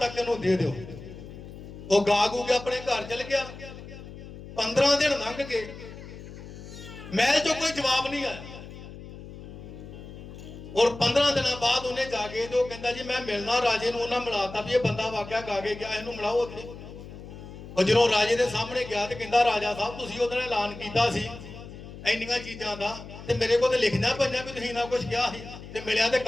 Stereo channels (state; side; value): noise; left; hum, 14 dB below the sound